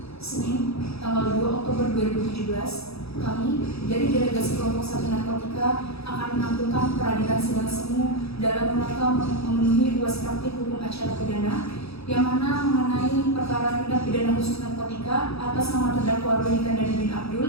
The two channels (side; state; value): right; late; 0.77 ms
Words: Senin, tanggal 2 Oktober 2017, kami dari Delegasi Kelompok 1 Narkotika akan menampilkan peradilan sidang semu dalam rangka memenuhi UAS praktik hukum acara pidana yang mana mengenai perkara tindak pidana khusus narkotika atas nama terdakwa Rudy Kandani bin